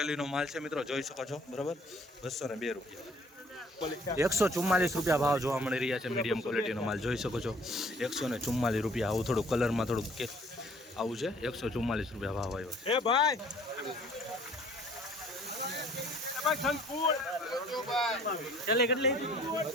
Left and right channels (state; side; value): normal; both; correlation 0.56